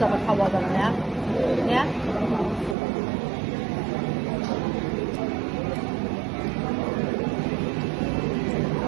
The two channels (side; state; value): left; drops out; at 2.8 s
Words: havadan ya. Ya.